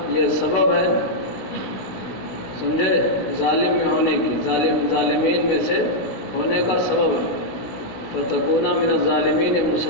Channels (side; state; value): right; late; 16 ms